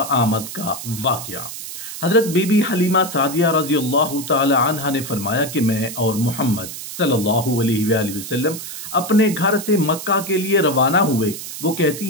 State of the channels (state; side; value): noise; right; hiss, 9 dB below the sound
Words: आमद का वाक़या। हज़रत बीबी हलीमा सादिया रज़ियल्लाहु ताला अन्हा ने फरमाया कि मैं और मोहम्मद सल्लल्लाहु अलैहि वसल्लम अपने घर से मक्का के लिए रवाना हुए। वो